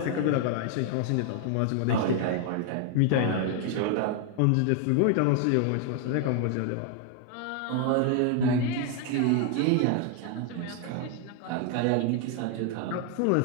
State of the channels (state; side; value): different; both; correlation 0.00